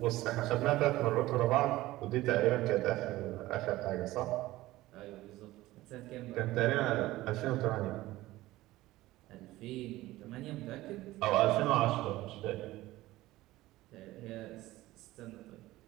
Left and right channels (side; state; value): left; quieter; 17.3 dB